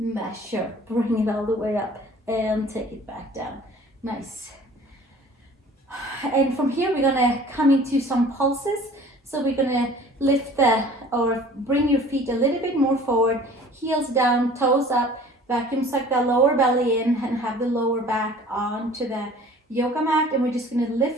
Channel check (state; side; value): normal; both; correlation 0.48